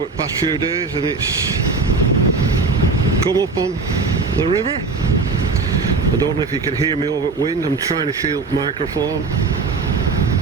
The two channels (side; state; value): left; quieter; 4.1 dB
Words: the past few days and it's come up on the river. I don't know if you can hear me over the wind. I'm trying to shield the microphone.